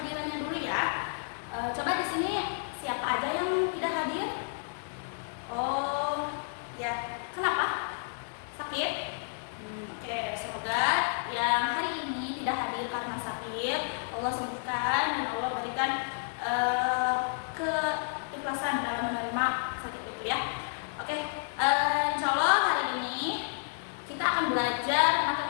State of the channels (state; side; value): silent; right; digital silence